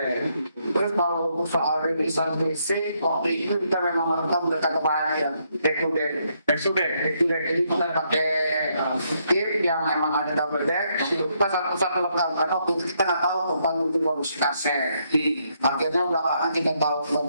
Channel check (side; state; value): both; inverted; correlation -0.75